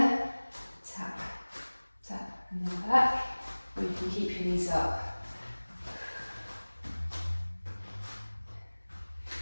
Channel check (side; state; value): both; inverted; correlation -1.00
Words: Tap, tap, and then back. Or you can keep your knees up.